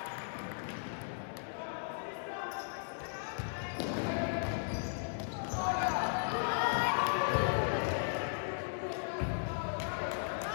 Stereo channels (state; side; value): silent; right; digital silence